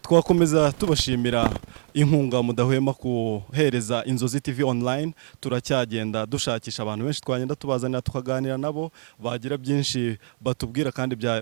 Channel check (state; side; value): silent; left; digital silence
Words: twakomeza tubashimira inkunga mudahwema kuhereza Inzozi TV online turacyagenda dushakisha abantu benshi twagenda tubazanira tukaganira nabo bagira byinshi batubwira kandi